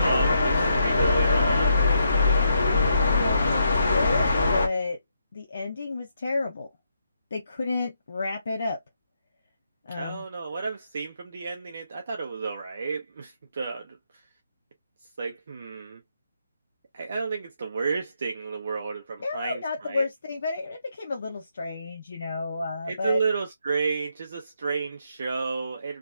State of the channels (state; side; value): inverted; both; correlation -0.78